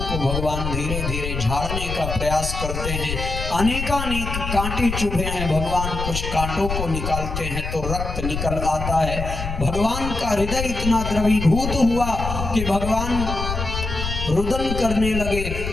को भगवान धीरे धीरे झाड़ने का प्रयास करते हैं। अनेकानेक कांटे चुभे हैं, भगवान कुछ कांटों को निकालते हैं तो रक्त निकल आता है। भगवान का हृदय इतना द्रवीभूत हुआ कि भगवान रुदन करने लगे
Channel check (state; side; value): noise; left; rumble, 5 dB below the sound